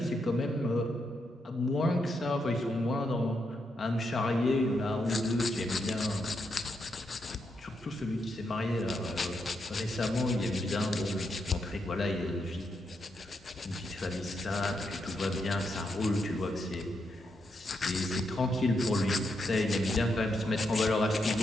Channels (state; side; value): normal; both; correlation 0.82